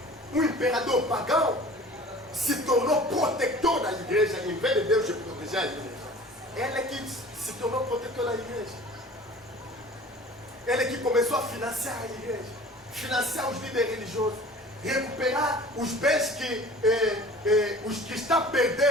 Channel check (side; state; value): both; normal; correlation 0.44